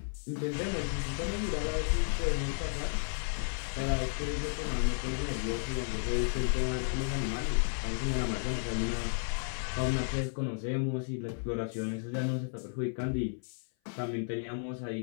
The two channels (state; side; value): silent; right; 56 dB below the other